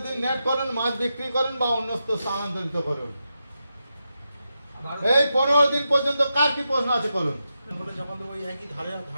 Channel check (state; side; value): inverted; both; correlation -0.88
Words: দিন নেট করুন, মাছ বিক্রি করুন বা অন্যত্র স্থানান্তরিত করুন। এই 15 দিন পর্যন্ত কার কি প্রশ্ন আছে করুন।